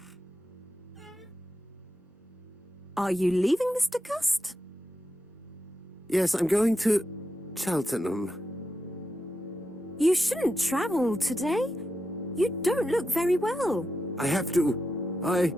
Are you leaving, Mr. Cust? Yes, I'm going to Cheltenham. You shouldn't travel today. You don't look very well. I have to.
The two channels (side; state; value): both; normal; correlation 0.87